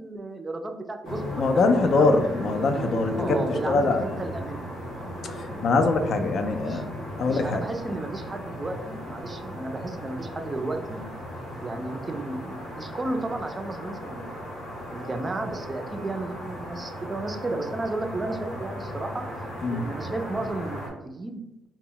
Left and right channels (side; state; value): both; normal; correlation 0.75